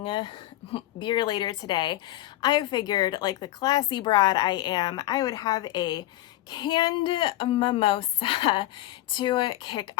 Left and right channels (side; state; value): right; quieter; 15.5 dB